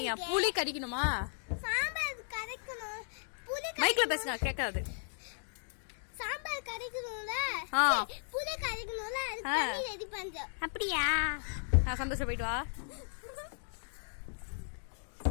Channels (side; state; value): right; silent; digital silence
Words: புளி கரைக்கணுமா? சாம்பார் கரைக்கணும். புளி மைக்ல பேசுங்க, கேட்காது. சாம்பார் கரைக்கணும்ல, புளி கரைக்கணும்ல, அது தண்ணி ரெடி பண்றோம். அப்படியா? சந்தோஷம், போயிட்டு வா.